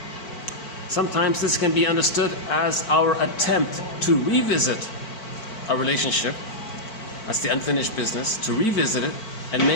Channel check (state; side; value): late; right; 4.5 ms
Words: Sometimes this can be understood as our attempt to revisit a relationship. That's the unfinished business, to revisit it and